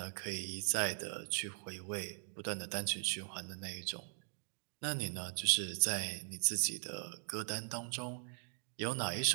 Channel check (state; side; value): silent; left; digital silence